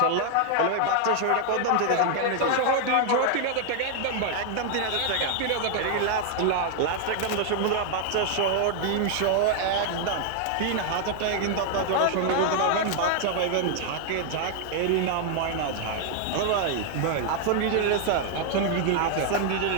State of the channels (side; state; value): both; different; correlation 0.00